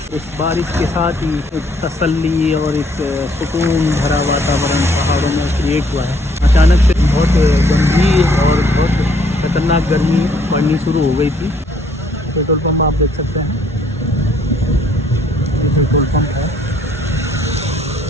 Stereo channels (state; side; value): normal; both; correlation 0.64